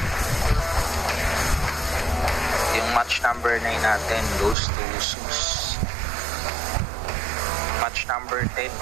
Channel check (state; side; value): drops out; left; at 4.5 s